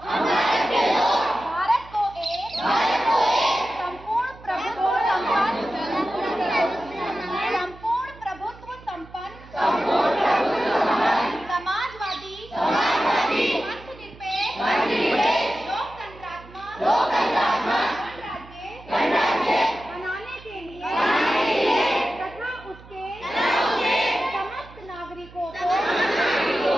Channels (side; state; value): right; noise; hum, 20 dB below the sound